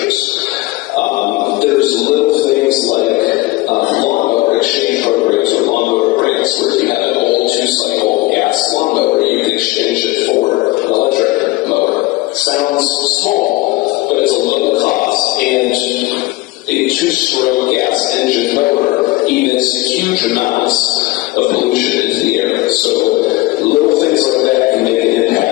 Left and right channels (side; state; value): right; quieter; 20.0 dB